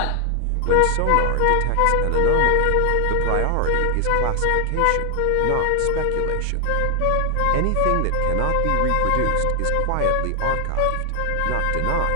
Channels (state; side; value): different; both; correlation 0.00